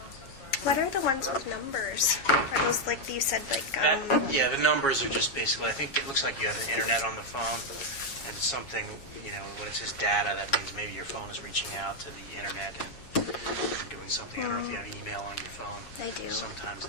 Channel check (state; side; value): late; right; 7.3 ms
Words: What are the ones with numbers? Are those like you said, like Yeah, the numbers are just basically, I think it looks like you have an internet on the phone, and something, when it says data, that means maybe your phone is reaching out to the internet and doing something. I don't know if you have email on your phone. I do. Sometimes